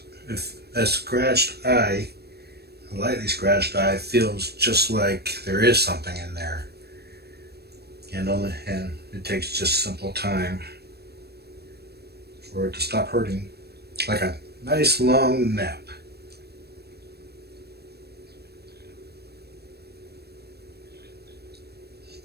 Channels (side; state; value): left; late; 0.47 ms